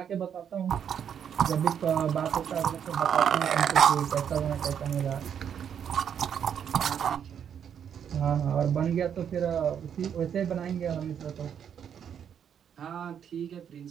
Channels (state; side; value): quieter; left; 8.4 dB